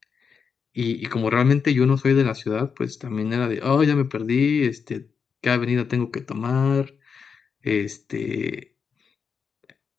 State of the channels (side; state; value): right; quieter; 6.1 dB